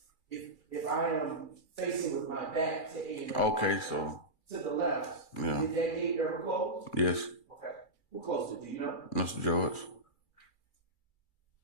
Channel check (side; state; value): right; late; 2.3 ms